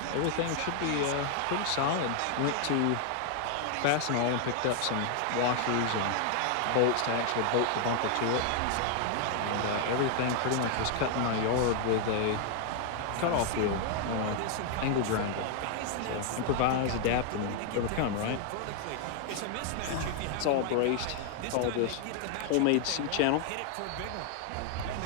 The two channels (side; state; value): both; different; correlation 0.00